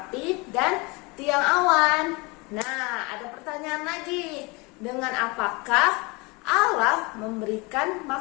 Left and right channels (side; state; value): right; quieter; 26.8 dB